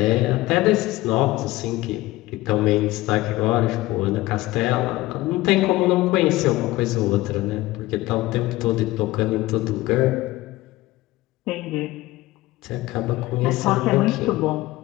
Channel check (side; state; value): right; quieter; 18.1 dB